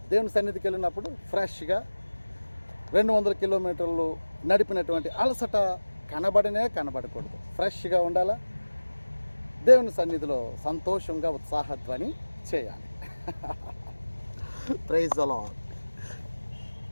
దేవుని సన్నిధికి వెళ్ళినప్పుడు ఫ్రెష్గా 200 కిలోమీటర్లు నడిపినటువంటి అలసట కనబడకూడదు. ఫ్రెష్గా ఉండాలా. దేవుని సన్నిధిలో సంతోషంగా ఉత్సాహధ్వని చేయాలి. Praise the lord.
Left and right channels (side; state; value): both; inverted; correlation -1.00